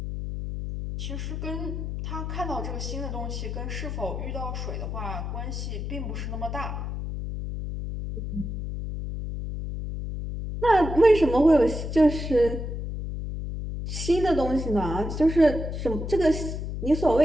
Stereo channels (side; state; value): left; noise; hum, 5 dB below the sound